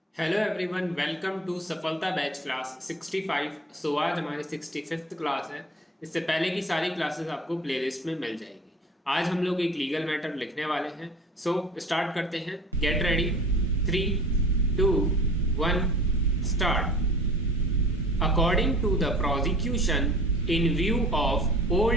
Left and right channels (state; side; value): normal; both; correlation 0.42